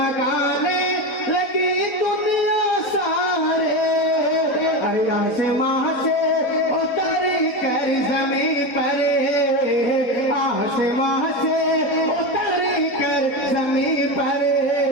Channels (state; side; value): late; right; 4.0 ms